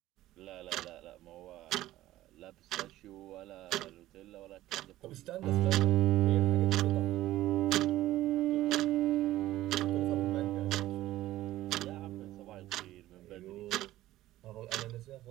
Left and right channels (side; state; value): left; quieter; 15.3 dB